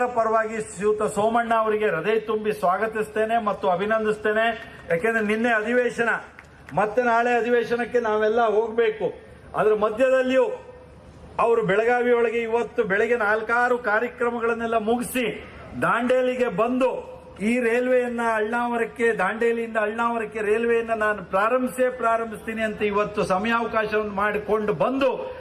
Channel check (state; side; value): identical; both; correlation 1.00